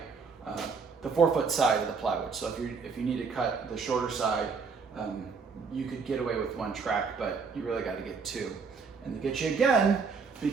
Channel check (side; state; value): left; quieter; 5.2 dB